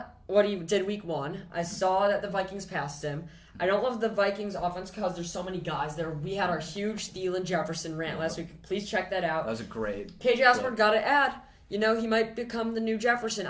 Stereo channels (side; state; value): both; identical; correlation 1.00